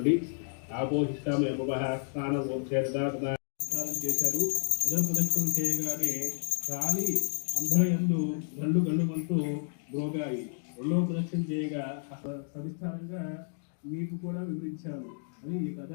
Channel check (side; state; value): right; silent; digital silence